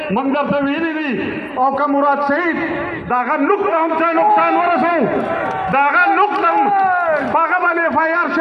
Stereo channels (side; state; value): both; identical; correlation 1.00